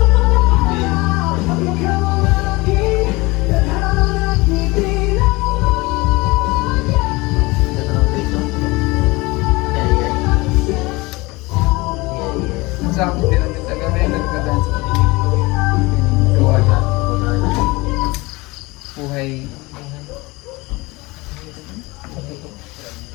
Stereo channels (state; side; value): quieter; right; 23.1 dB